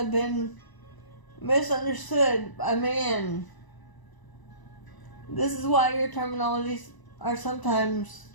been misunderstood by man. This is why your terminologies are sometimes,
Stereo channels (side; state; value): right; late; 1.0 ms